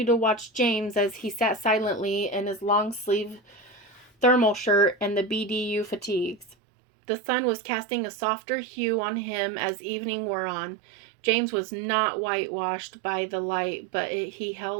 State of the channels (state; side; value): drops out; left; at 6.6 s